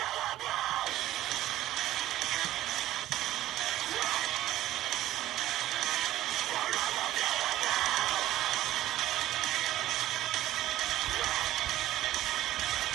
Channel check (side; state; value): left; quieter; 14.4 dB